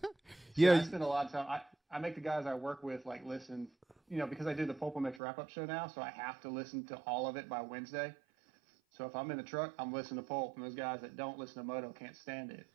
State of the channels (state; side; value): drops out; left; at 5.2 s